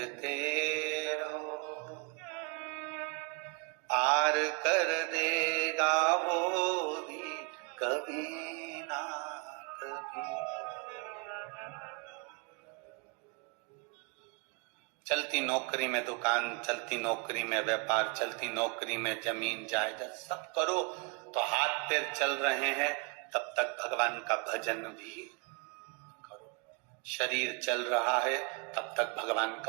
रहो, पार कर देगा वो भी कभी ना कभी। चलती नौकरी में दुकान, चलती नौकरी में व्यापार, चलती नौकरी में जमीन जायदाद सब करो तो हाथ पैर चल रहे हैं, तब तक भगवान का भजन भी करो। शरीर चल रहा है तब तक भगवान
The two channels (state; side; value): quieter; left; 33.4 dB